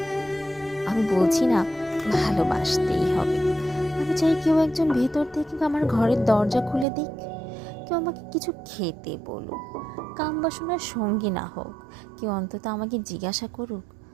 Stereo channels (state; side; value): drops out; left; at 6.9 s